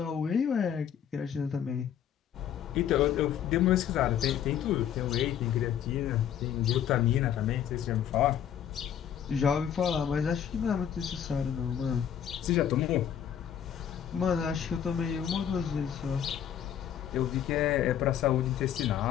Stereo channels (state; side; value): quieter; right; 9.4 dB